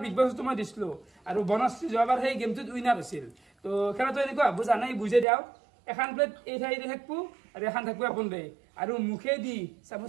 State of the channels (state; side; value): drops out; left; at 5.2 s